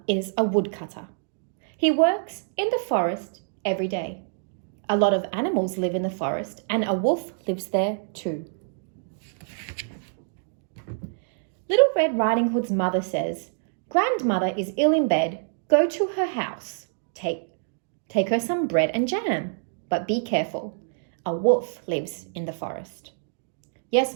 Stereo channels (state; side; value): silent; left; digital silence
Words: is a woodcutter. He works in the forest every day. A lot of animals live in the forest, and a wolf lives there too. Little Red Riding Hood's mother says, "Grandmother is ill in bed. Go to her house. Take her some bread and jam. But be careful. A wolf lives in the forest." "Yes,